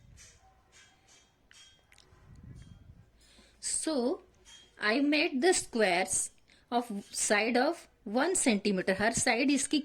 So, I made the squares of side of 1 centimeter. हर साइड इसकी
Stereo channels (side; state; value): both; identical; correlation 1.00